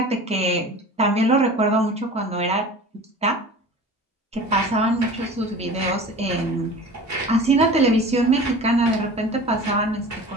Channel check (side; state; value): both; normal; correlation 0.39